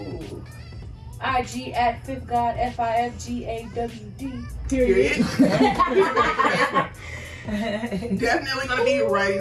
IG at Fifth God, FIFGAWD. Period. Definitely gonna be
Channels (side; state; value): both; identical; correlation 1.00